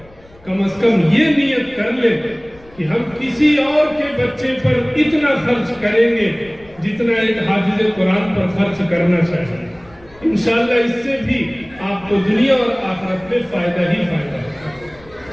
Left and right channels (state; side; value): noise; left; rumble, 26 dB below the sound